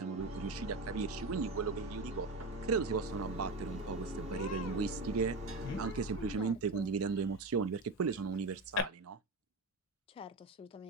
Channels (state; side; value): quieter; left; 3.3 dB